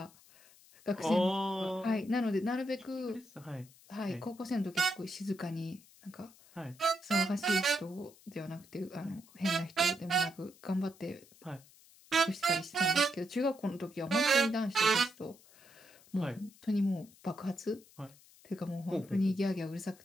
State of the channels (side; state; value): left; noise; hiss, 25 dB below the sound